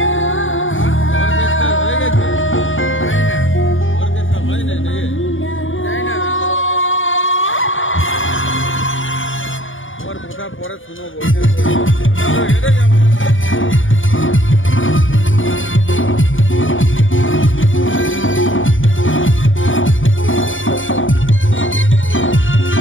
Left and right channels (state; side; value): late; right; 0.57 ms